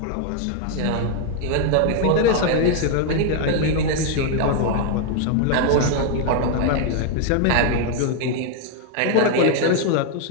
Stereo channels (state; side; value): different; both; correlation 0.00